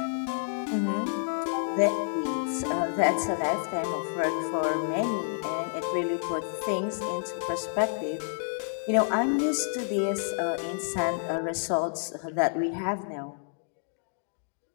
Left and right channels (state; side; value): silent; right; digital silence